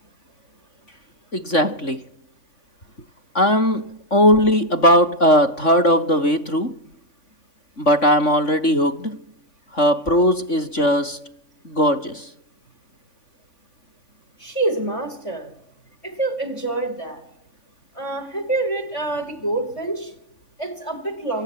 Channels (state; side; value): late; right; 3.5 ms